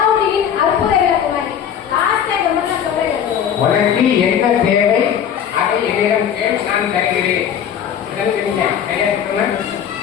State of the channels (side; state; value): right; quieter; 8.8 dB